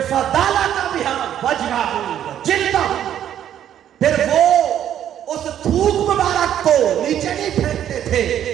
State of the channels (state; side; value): quieter; left; 10.5 dB